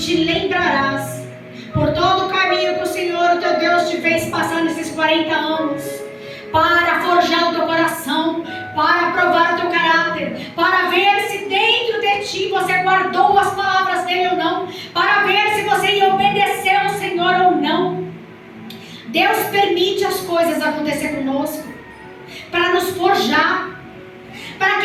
lembrarás por todo o caminho que o Senhor, o teu Deus, te fez passar nesses 40 anos, para forjar o teu coração, para provar o teu caráter, para ver se dentro de ti você guardou as palavras dele ou não, para ver se você ia obedecer ao Senhor ou não. Deus permite as coisas acontecer conosco para nos forjar, para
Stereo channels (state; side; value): identical; both; correlation 1.00